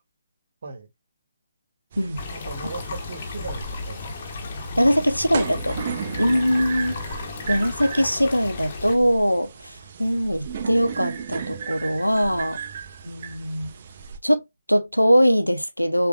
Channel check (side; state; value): both; inverted; correlation -0.95